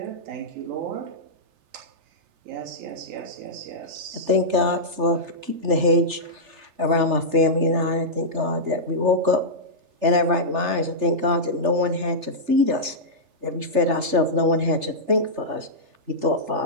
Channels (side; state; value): left; late; 3.3 ms